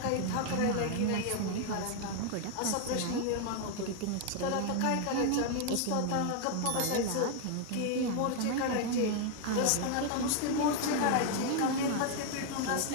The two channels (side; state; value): both; different; correlation 0.00